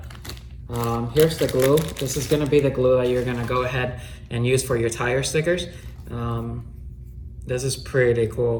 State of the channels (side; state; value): both; identical; correlation 1.00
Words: Here's the glue. This is gonna be the glue that you're gonna go ahead and use for your tire stickers. This is pretty